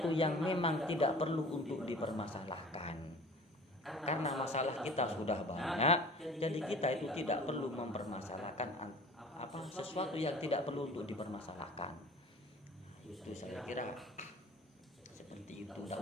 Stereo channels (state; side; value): normal; both; correlation 0.44